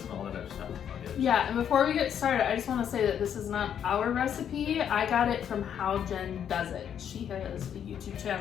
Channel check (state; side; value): quieter; right; 8.9 dB